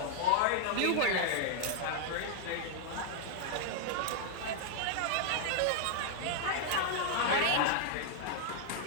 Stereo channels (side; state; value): both; different; correlation 0.00